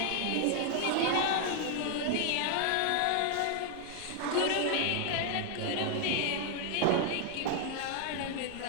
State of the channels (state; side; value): different; both; correlation 0.00